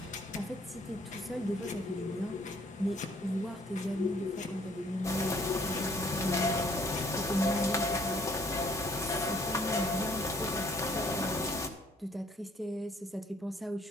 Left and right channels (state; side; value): normal; both; correlation 0.62